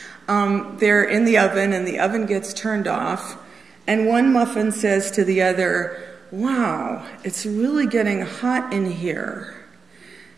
They're in the oven, and the oven gets turned off, and one muffin says to the other, wow, it's really getting hot in here.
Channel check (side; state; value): left; quieter; 5.2 dB